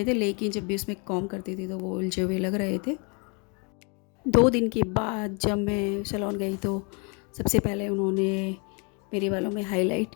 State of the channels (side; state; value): right; quieter; 34.0 dB